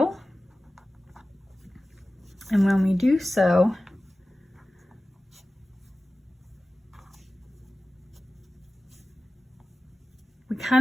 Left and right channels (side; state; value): both; normal; correlation 0.96